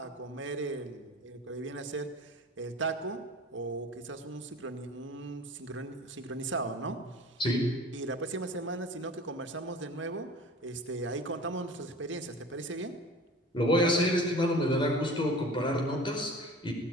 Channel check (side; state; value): both; normal; correlation 0.41